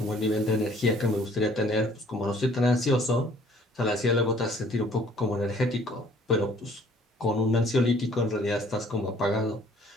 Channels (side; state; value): both; normal; correlation 0.57